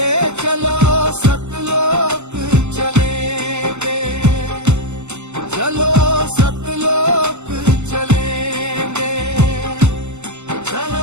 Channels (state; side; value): late; left; 0.82 ms